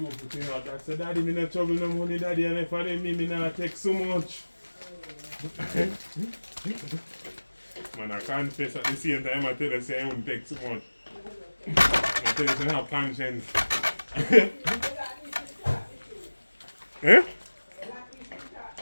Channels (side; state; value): both; inverted; correlation -1.00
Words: know, that said, Daddy, me not trouble no money, Daddy, and if I didn't me not take so much. Man, I confess at the same time, I tell you, say I won't take so much. I tell you, say I have conscience. Eh?